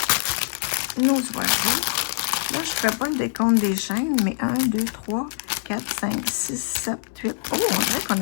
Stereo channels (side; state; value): right; silent; 60 dB below the other